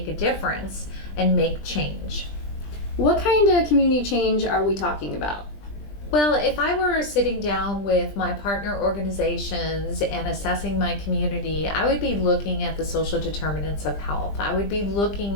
a difference and make change. What kind of community change are we talking about? Well, if I were sitting down with my partner organizations and assessing my community, I would be looking at the social determinants of health. I would be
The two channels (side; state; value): right; late; 20 ms